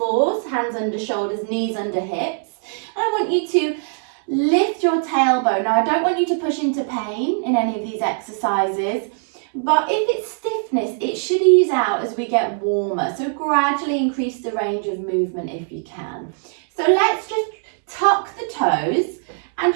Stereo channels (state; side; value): silent; left; 60 dB below the other